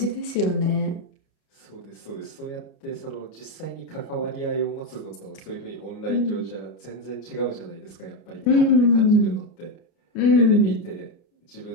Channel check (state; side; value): late; right; 29 ms